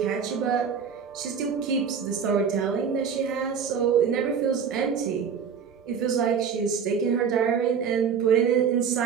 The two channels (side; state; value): left; quieter; 6.8 dB